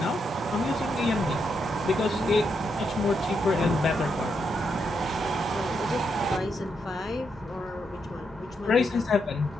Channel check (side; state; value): both; normal; correlation 0.80